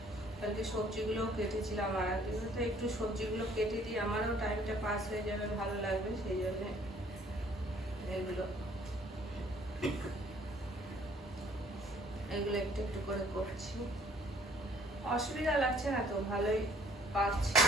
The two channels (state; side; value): normal; both; correlation 0.59